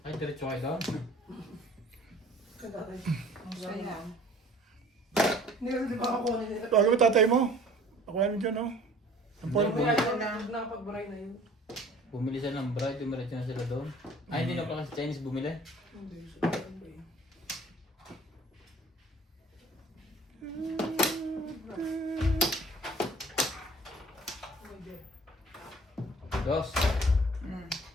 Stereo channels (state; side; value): normal; both; correlation 0.50